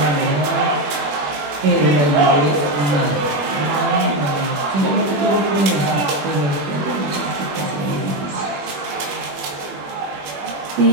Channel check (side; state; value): left; late; 21 ms